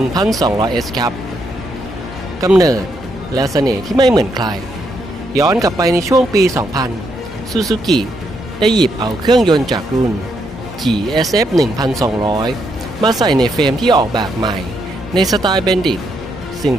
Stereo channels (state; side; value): normal; both; correlation 0.77